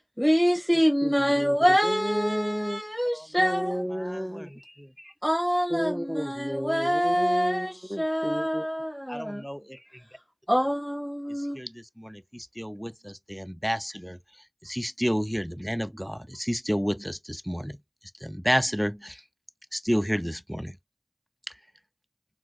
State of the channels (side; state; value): both; identical; correlation 1.00